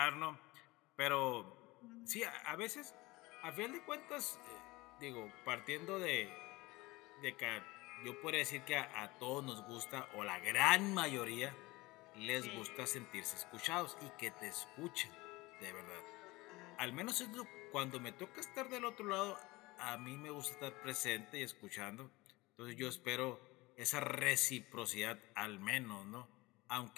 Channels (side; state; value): right; quieter; 21.4 dB